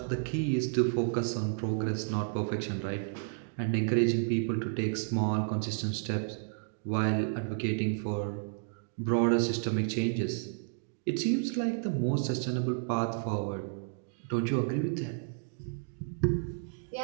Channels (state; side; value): silent; left; digital silence